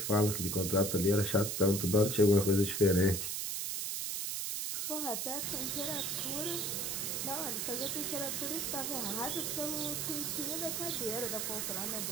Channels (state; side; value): noise; right; hiss, 2 dB below the sound